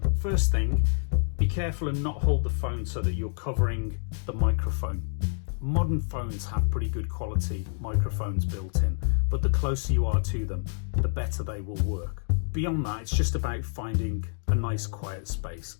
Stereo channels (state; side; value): silent; right; digital silence